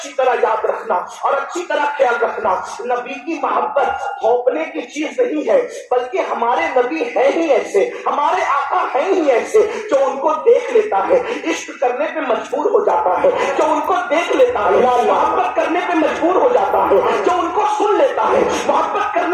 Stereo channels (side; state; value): both; identical; correlation 1.00